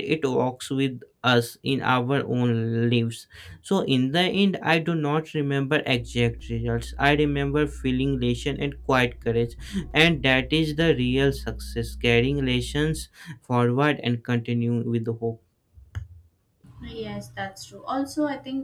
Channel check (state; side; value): identical; both; correlation 1.00